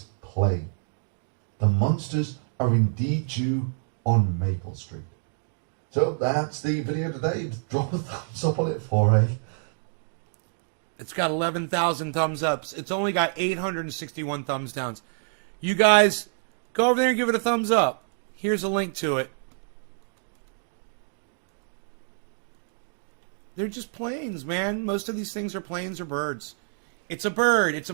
plane. The monsters are indeed due on Maple Street. So that's the video today. Drop a thumbs up on it for me. It's got 11,000 thumbs ups. It's only got 861 thumbs downs. You guys, go over there and give it a thumbs up. Here's a link to it. They're just planes, man. Most of these things are planes or birds. It's a bird. It's a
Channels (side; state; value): left; silent; digital silence